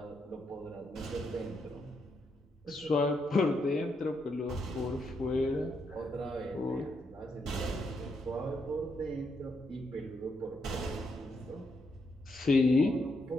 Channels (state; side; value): normal; both; correlation 0.79